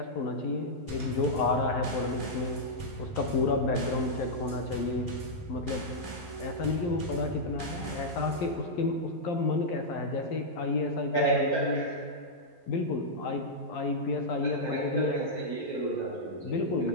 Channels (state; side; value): late; right; 11 ms